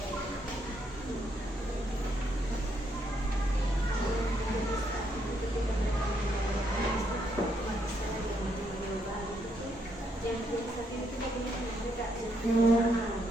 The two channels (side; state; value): both; normal; correlation 0.75